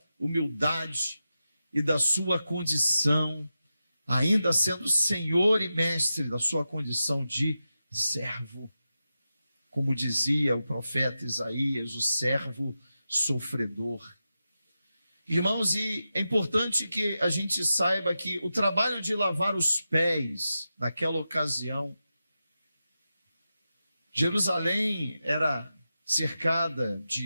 humildade e da sua condição, ainda sendo Senhor e Mestre, da sua condição de servo. Como dizia o profeta Isaías, o servo sofredor. Irmãos, e é importante que a gente saiba que o trabalho de lavar os pés naquela ocasião, Jerusalém era cercada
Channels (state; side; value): inverted; both; correlation -0.91